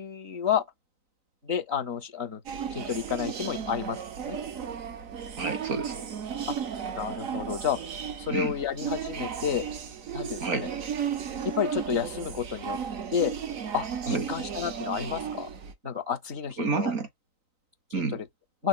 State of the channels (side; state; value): left; late; 3.9 ms